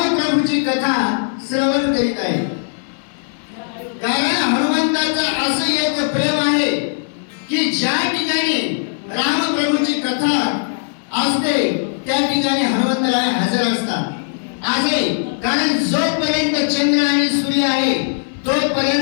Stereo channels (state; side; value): silent; right; digital silence